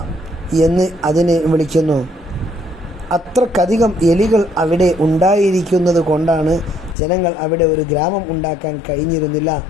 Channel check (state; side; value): drops out; right; at 7.0 s